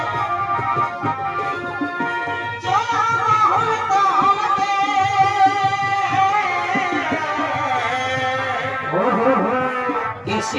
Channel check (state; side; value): identical; both; correlation 1.00